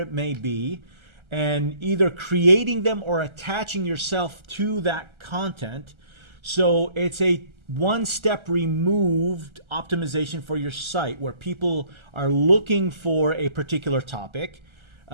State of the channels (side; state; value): left; late; 1.3 ms